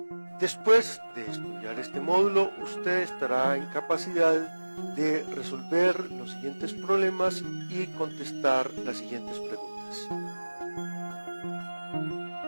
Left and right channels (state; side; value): inverted; both; correlation -1.00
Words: Después de estudiar este módulo, usted estará en capacidad de resolver los siguientes problemas y contestar las siguientes preguntas.